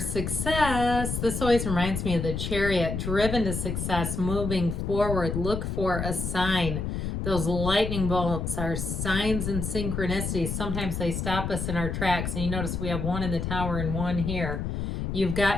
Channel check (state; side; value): noise; left; rumble, 3 dB below the sound